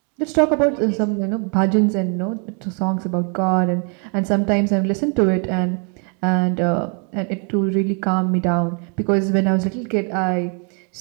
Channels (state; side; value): quieter; left; 37.7 dB